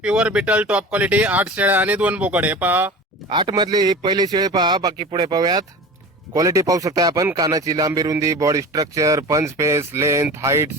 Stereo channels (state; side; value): normal; both; correlation 0.35